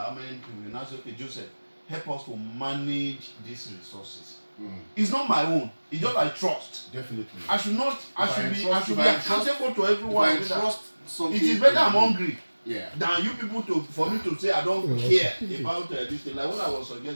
how many people? You now say, okay, Joseph, help us to manage these resources. It's not my own. It's just like trust. Definitely. I should be accountable to everyone. If I trust something, it is better I'm hungry. Yeah. Than you people for me to say I don't care about this thing. Like what I was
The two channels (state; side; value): inverted; both; correlation -1.00